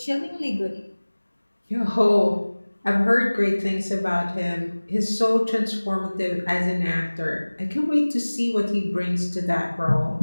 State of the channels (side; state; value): both; inverted; correlation -1.00